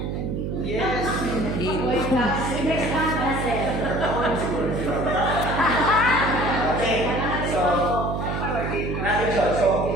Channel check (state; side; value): noise; right; hum, 3 dB below the sound